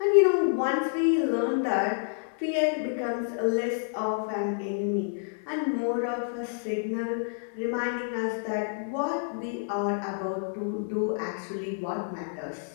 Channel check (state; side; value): silent; right; digital silence